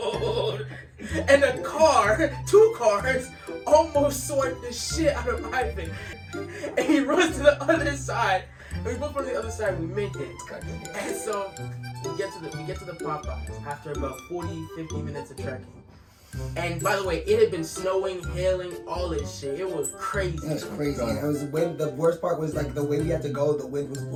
and a car, 2 cars, almost swiped the shit out of Ivan, and he runs to the other side. And we both run to the other side. We make it, and so we get to the Popeyes after about 40-50 minutes of trekking. And by the way, it had been snowing, hailing, all this shit. It was crazy. It was crazy. And it was wind. The worst part was like the way we had to go. The wind was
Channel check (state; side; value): identical; both; correlation 1.00